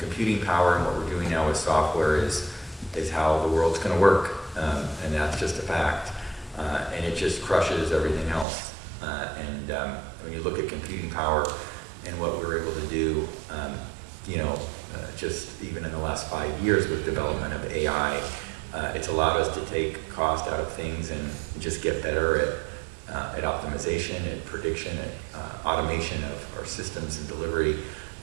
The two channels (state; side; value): drops out; left; at 8.5 s